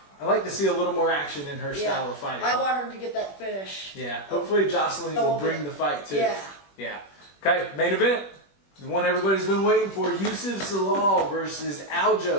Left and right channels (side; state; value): right; late; 21 ms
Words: I like to see a little more action in her style of fighting. I want her to get that finish. Yeah, hopefully Jocelyn will bring the fight too. Yeah. Yeah. Okay, main event. The one everybody's been waiting for: Youssef Zalal versus